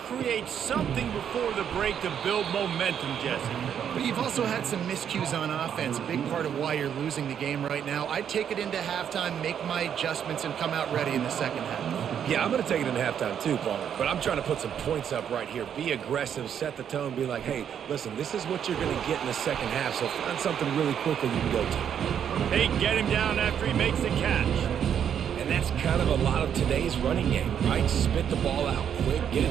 something before the break to build momentum, Jesse. But you've also had some miscues on offense, a big part of why you're losing the game right now. I'd take it into halftime, make my adjustments, and come out ready in the second half. Yeah, I'm going to take it into halftime too, Paul. But I'm trying to put some points up right here. Be aggressive, set the tone, be like, hey, listen, this is what you're going to get in the second half, so find something really quickly you can go to. They get him down after he makes the catch. And that's kind of a lot of today's running game, right? Spit the ball out quick, get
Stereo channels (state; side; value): quieter; left; 8.7 dB